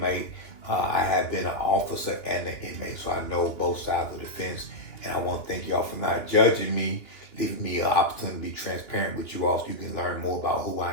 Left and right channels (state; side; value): late; right; 2.9 ms